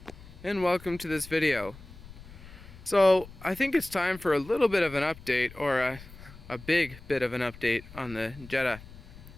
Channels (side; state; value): left; noise; rumble, 18 dB below the sound